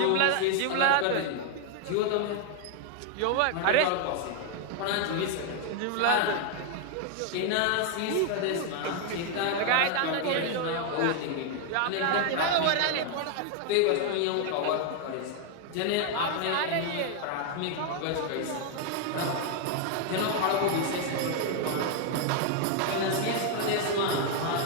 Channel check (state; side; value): different; both; correlation 0.00